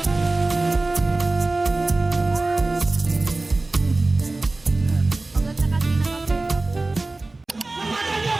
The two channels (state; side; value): quieter; left; 3.2 dB